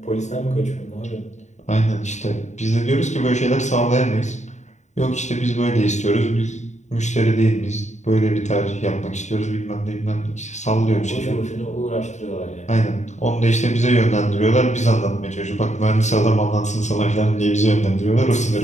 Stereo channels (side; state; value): right; late; 0.34 ms